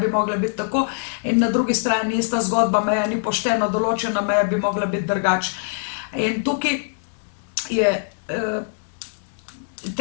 mogla biti tako, in na drugi strani ista zgodba, meja ni poštena, določena meja bi mogla biti drugače. In tukaj je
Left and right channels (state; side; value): silent; right; digital silence